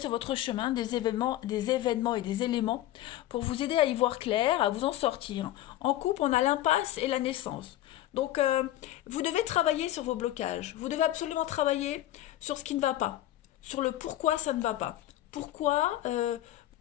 sur votre chemin des événements et des éléments pour vous aider à y voir clair, à vous en sortir. En couple, on a l'impasse et la naissance. Donc, vous devez travailler sur vos blocages. Vous devez absolument travailler sur ce qui ne va pas, sur le pourquoi ça ne va pas. Pourquoi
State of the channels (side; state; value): right; quieter; 14.1 dB